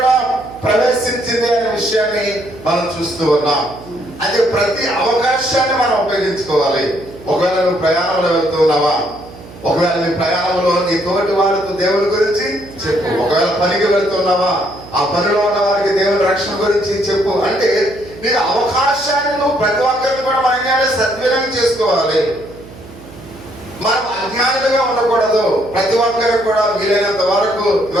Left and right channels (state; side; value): noise; right; hum, 18 dB below the sound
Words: ప్రవేశించింది అనే విషయాన్ని మనం చూస్తూ ఉన్నాం. అది ప్రతి అవకాశాన్ని మనం ఉపయోగించుకోవాలి. ఒకవేళ నువ్వు ప్రయాణంలో వెళ్తున్నావా, ఒకవేళ నీ ప్రయాణంలో నీ తోటి వారితో దేవుని గురించి చెప్పు. ఒకవేళ పనికి వెళ్తున్నావా, ఆ పనిలో ఉన్న వారికి దేవుని రక్షణ గురించి చెప్పు. అంటే నీకు అవకాశాన్ని నువ్వు ప్రతి ఒక్కరిని కూడా మనం సద్వినియోగం చేసుకోవాలి. మనం అజ్ఞానులుగా ఉండకూడదు. ప్రతి ఒక్కరికి కూడా వీలైనంత వరకు